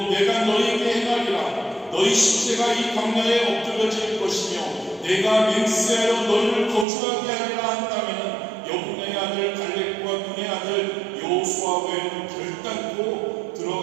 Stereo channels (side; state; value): left; drops out; at 6.9 s